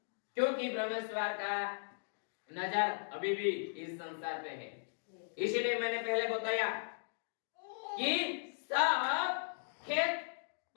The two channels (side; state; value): right; silent; digital silence